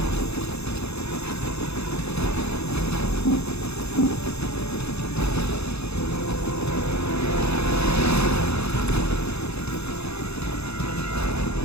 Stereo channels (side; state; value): right; late; 0.79 ms